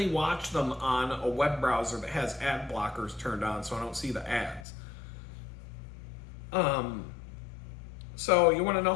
watch them on a web browser that has ad blockers turned on so I don't see the ads. So you want to know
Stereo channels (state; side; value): drops out; right; at 4.7 s